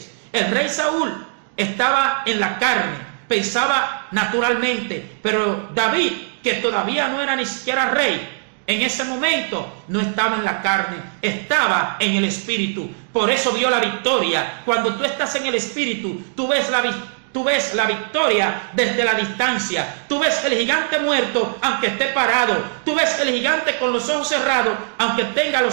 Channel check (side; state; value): left; silent; digital silence